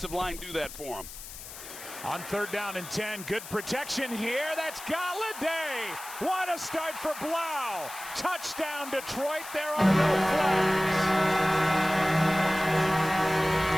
line do that for him? On 3rd down and 10, good protection here. That's Galladay. What a start for Blau. Touchdown, Detroit. There are no flags.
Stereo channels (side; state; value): left; noise; hiss, 13 dB below the sound